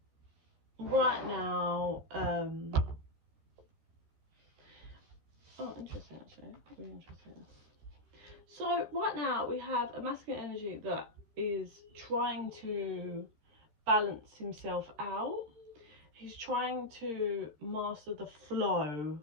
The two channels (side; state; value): left; late; 13 ms